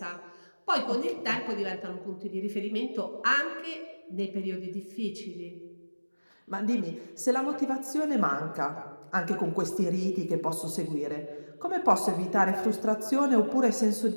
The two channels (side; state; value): both; inverted; correlation -1.00